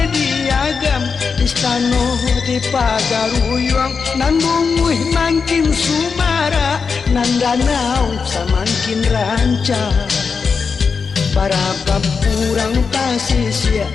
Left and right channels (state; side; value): quieter; right; 5.4 dB